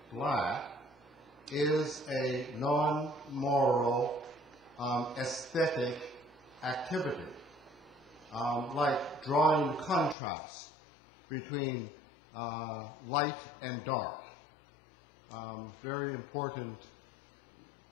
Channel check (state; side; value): drops out; right; at 10.2 s